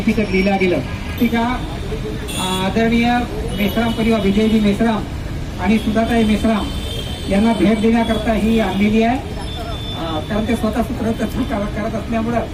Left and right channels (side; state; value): both; identical; correlation 1.00